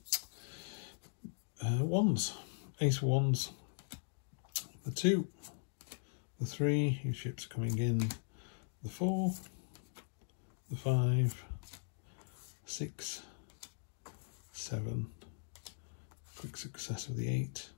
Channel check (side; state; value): right; silent; digital silence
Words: wands. Ace of Wands, the 2, the 3, your ships coming in, the 4, the 5, 6, 7, quick success of the 8.